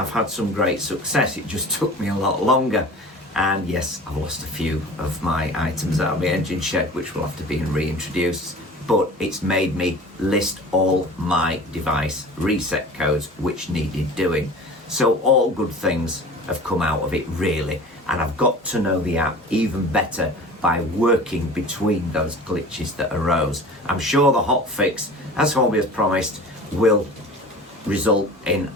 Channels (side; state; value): both; normal; correlation 0.40